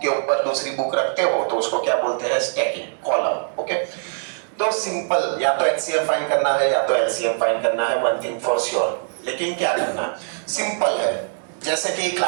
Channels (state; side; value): silent; left; digital silence